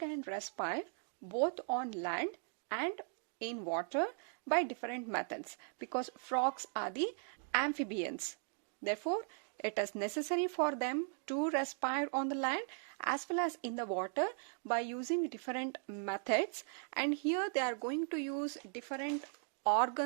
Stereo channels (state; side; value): silent; left; 52 dB below the other